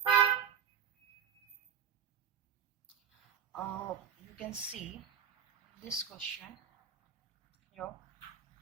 You can see this question here.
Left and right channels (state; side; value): quieter; left; 8.3 dB